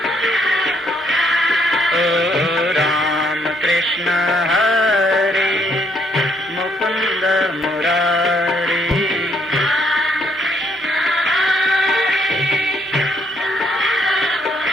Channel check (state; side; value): normal; both; correlation 0.70